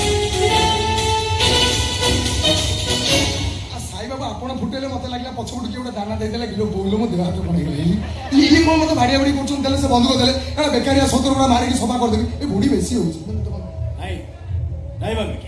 ଆପଣ ଫୁଟେଇଲେ ମତେ ଲାଗିଲା ପଛପଟୁ କିଏ ଗୋଟେ ଦାନା ଦେଇଦେଲା କିଲୋ ବୋଇଲେ ମୋ ଦେହ ହାତ କଣ ହେଇଗଲା। ଇଏ କଣ ମତେ ଭାଡିଆ ଭାଡି କରୁଛନ୍ତି? ତାହେଲେ ସେ ବନ୍ଧୁକ ଦେଲେ ଏଟା ବେକାରିଆ ସତର ଗୁଡା ମାରିକି ସଫା କରିଦେବି। ଏ ବୁଢୀ ବେଶୀ ହଉଛି। ନାଇଁ ନାଇଁ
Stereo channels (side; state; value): both; identical; correlation 1.00